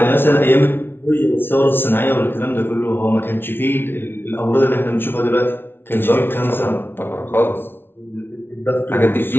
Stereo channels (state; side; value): late; right; 0.11 ms